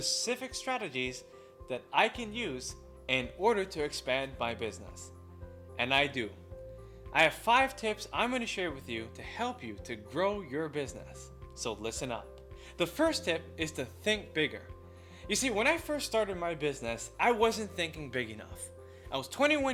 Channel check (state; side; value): identical; both; correlation 1.00